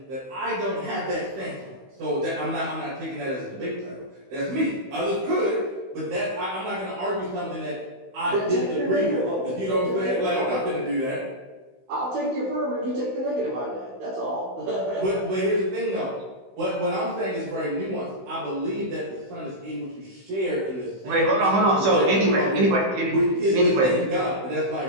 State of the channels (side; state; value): left; late; 16 ms